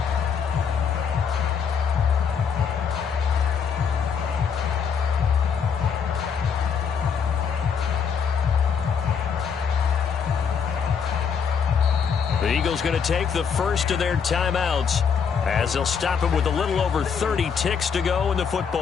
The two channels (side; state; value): right; quieter; 6.6 dB